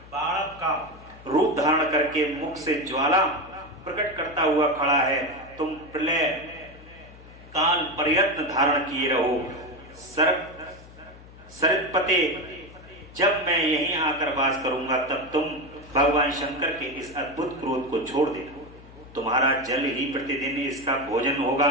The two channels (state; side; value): noise; left; hum, 20 dB below the sound